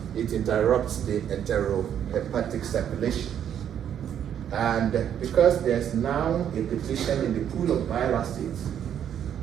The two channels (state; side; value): quieter; left; 9.4 dB